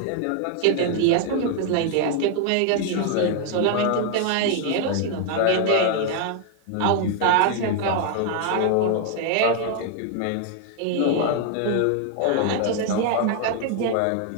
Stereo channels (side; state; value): both; different; correlation 0.00